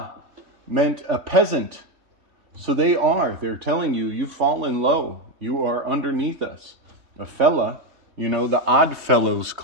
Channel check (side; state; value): left; late; 3.2 ms